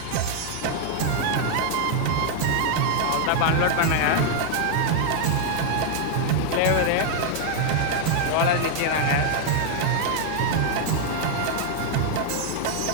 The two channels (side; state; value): both; different; correlation 0.00